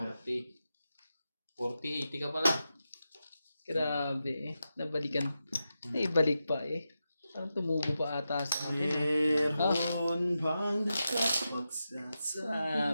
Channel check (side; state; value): both; inverted; correlation -0.89